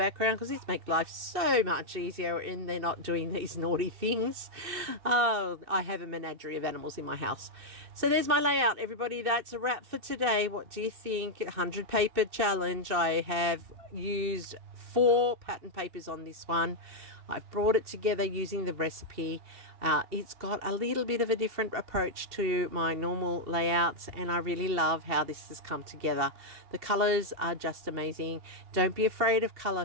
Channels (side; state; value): left; late; 2.6 ms